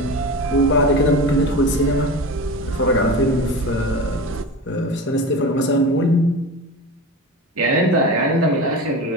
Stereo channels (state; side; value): normal; both; correlation 0.29